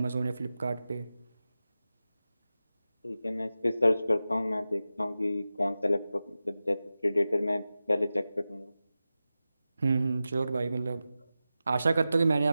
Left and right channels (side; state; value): both; inverted; correlation -0.94